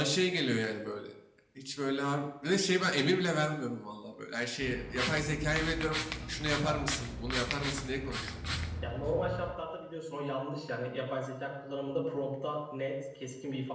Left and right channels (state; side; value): identical; both; correlation 1.00